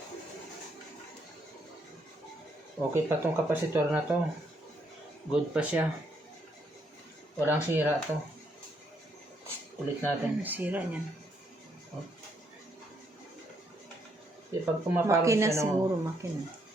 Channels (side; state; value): both; normal; correlation 0.73